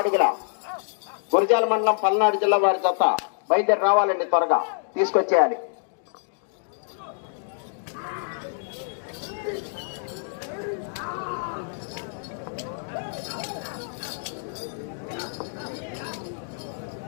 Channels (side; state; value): right; silent; digital silence